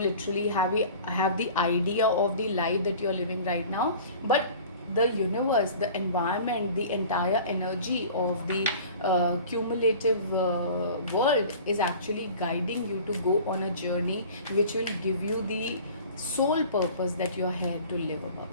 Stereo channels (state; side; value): inverted; both; correlation -0.43